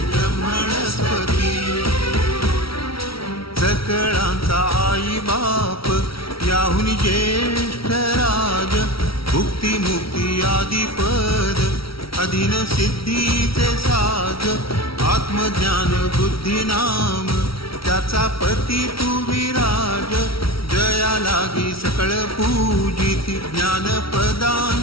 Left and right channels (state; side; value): late; right; 0.75 ms